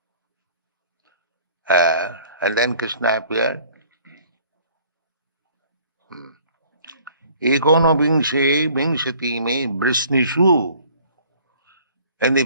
and then Krishna appeared. Ikono Bingse, Bingshati me, Vrishnishu. In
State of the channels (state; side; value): inverted; both; correlation -0.55